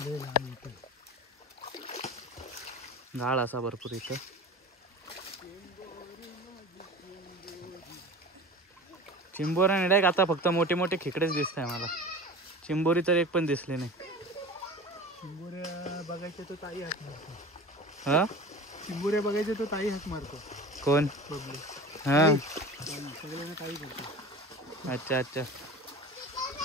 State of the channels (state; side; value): normal; both; correlation 0.35